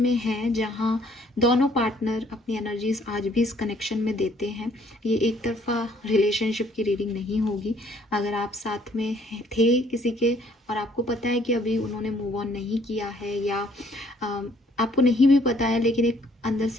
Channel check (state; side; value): normal; both; correlation 0.63